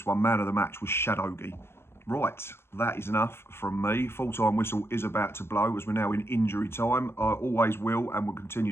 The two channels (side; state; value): right; late; 0.12 ms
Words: one. Man of the match was Shadowgi. Right, that is enough from me. Full-time whistle is about to blow as we're now in injury time. I always will and will